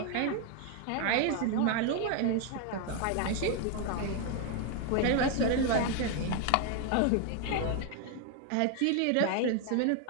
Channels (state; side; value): different; both; correlation 0.01